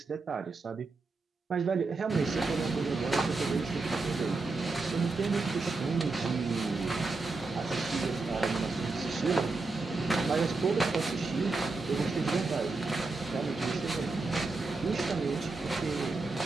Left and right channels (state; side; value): quieter; left; 3.7 dB